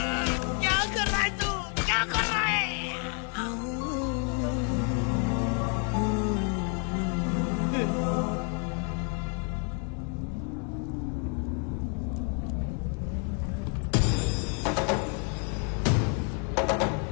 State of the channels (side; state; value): right; quieter; 39.5 dB